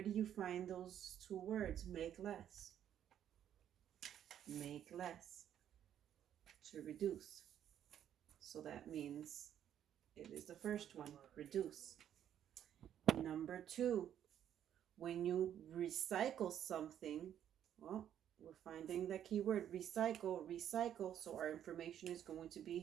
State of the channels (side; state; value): left; quieter; 10.2 dB